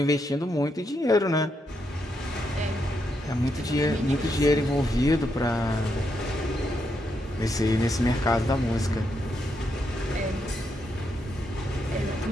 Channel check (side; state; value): both; normal; correlation 0.81